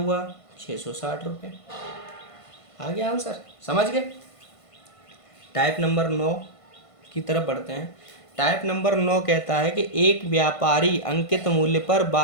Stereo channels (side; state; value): right; late; 1.5 ms